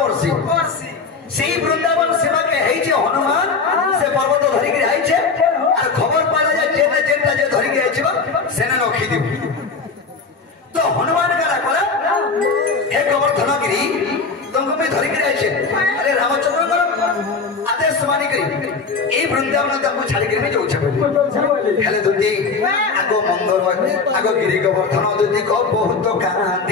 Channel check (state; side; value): quieter; right; 4.6 dB